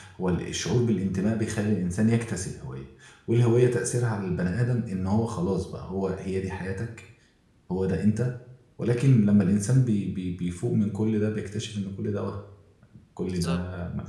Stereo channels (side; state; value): both; identical; correlation 1.00